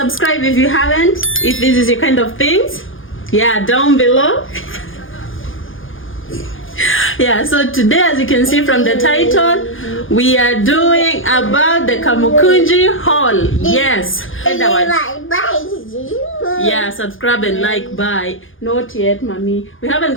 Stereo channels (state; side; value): late; right; 0.58 ms